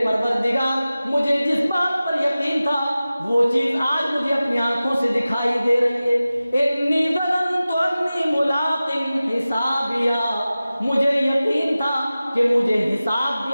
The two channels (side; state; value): both; inverted; correlation -0.96